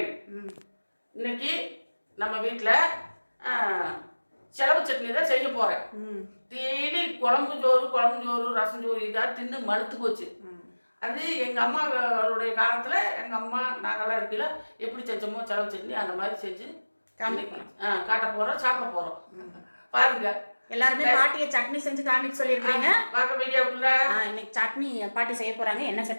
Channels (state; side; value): inverted; both; correlation -1.00